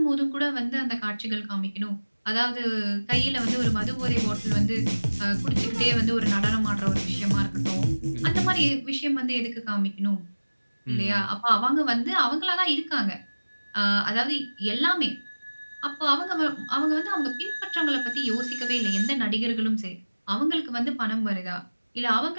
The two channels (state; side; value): inverted; both; correlation -1.00